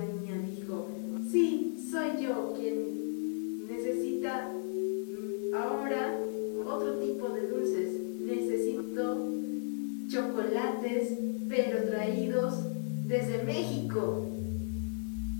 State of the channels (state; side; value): silent; right; 55 dB below the other